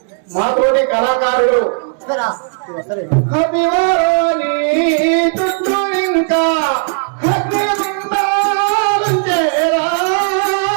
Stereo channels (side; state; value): left; silent; 70 dB below the other